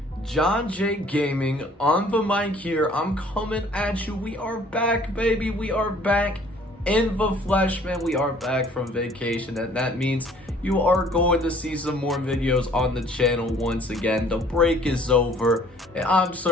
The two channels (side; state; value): both; normal; correlation 0.56